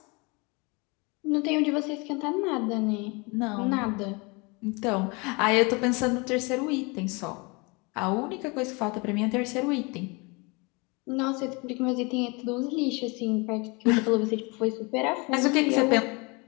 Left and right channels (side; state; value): right; quieter; 28.4 dB